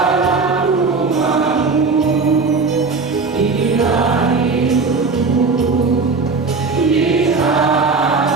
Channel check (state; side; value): quieter; left; 4.3 dB